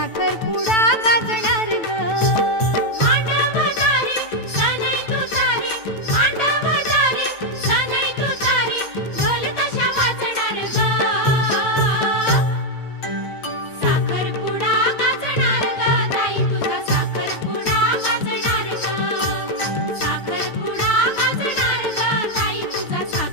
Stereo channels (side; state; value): right; late; 9.1 ms